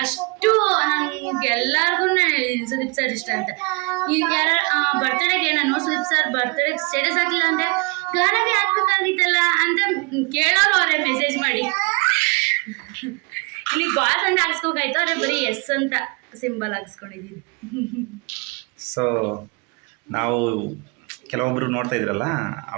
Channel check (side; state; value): left; quieter; 30.5 dB